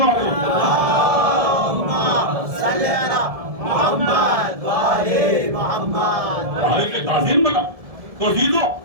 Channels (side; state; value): left; late; 1.7 ms